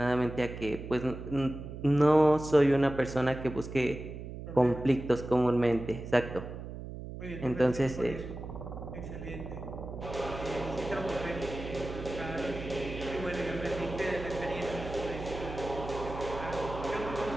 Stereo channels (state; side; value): noise; right; hum, 9 dB below the sound